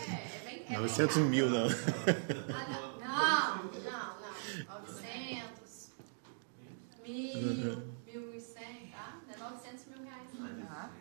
É bem 900 mil, não. Não. 900, 1.000, 1.100, tá? Não é 900 mil reais.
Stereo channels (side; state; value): left; silent; digital silence